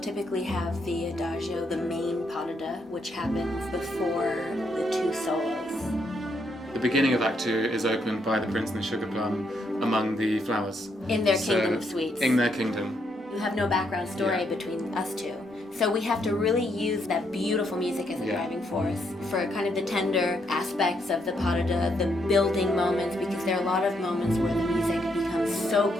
have the adagio, the main pas de deux, which happens before the two solos. The beginning of Act 2 is opened by the prince and the sugar plum among the flowers. In their kingdom of sweets. In their kingdom. You have no background story between us two. So we have to really use that beautiful music as a driving force for kind of the tender aspects of the pas de deux, the building moments, because there are a lot of moments where the music becomes so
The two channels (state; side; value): normal; both; correlation 0.76